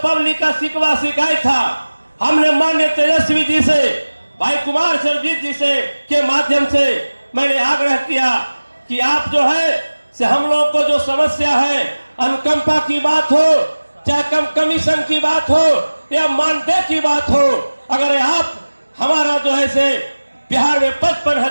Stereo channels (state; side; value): inverted; both; correlation -1.00